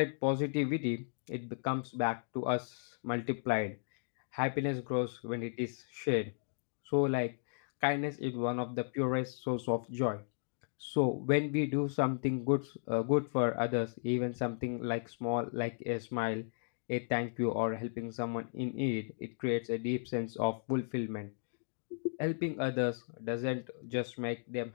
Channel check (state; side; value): silent; right; digital silence